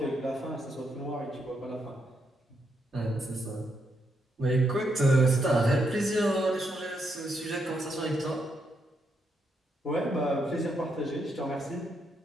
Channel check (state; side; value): normal; both; correlation 0.79